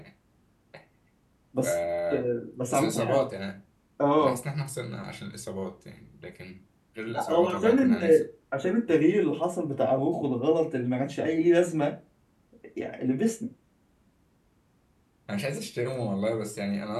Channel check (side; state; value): both; identical; correlation 1.00